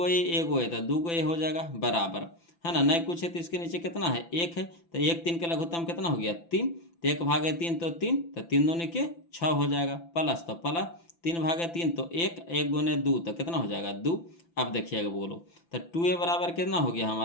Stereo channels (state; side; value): late; right; 5.9 ms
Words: ए तो 2 गो ए हो जाएगा बराबर, है ना। नहीं कुछ है तो इसके नीचे कितना है, 1 है, तो 1 3 का लघुत्तम कितना हो गया 3, तो 1/3 तो 3, तो 3 दूनी के 6 हो जाएगा, प्लस तो प्लस 3/3 तो 1, 1 गुने 2 तो कितना हो जाएगा 2। अब देखिएगा बोलो, तो 2a बराबर कितना हो गया